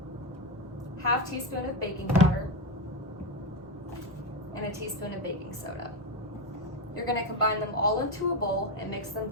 ½ teaspoon of baking powder, and a teaspoon of baking soda. You're going to combine them all into a bowl and mix them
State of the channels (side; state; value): both; normal; correlation 0.12